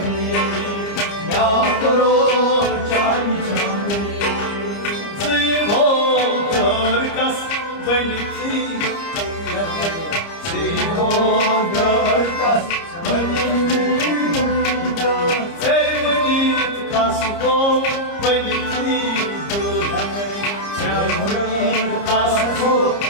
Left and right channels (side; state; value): right; late; 30 ms